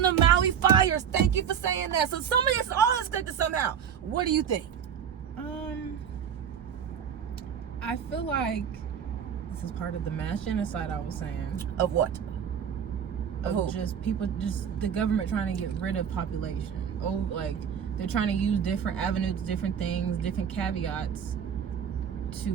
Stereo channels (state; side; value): quieter; left; 8.1 dB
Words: the Maui fires. Thank you for saying that. So some of this all is connected somehow. What do you think? I feel like this is part of the mass genocide I was saying. Of what? Of just people, just the government trying to get rid of population. Oh, like they're trying to use different avenues, different things, different caveats to